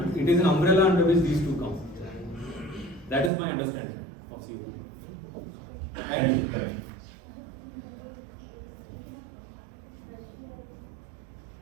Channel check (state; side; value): drops out; left; at 3.3 s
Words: it is an umbrella under which these two come. That is my understanding of COPD. Thank you.